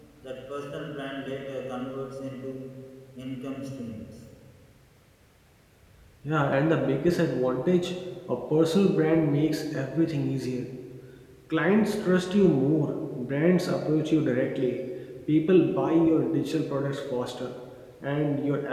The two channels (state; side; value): identical; both; correlation 1.00